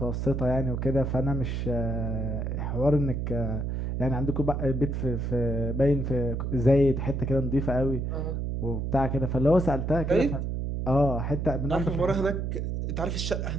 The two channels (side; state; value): right; noise; hum, 2 dB below the sound